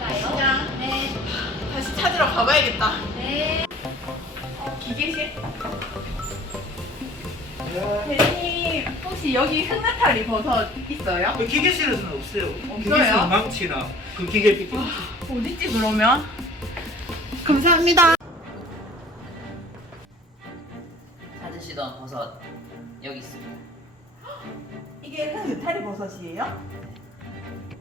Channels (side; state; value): both; normal; correlation 0.48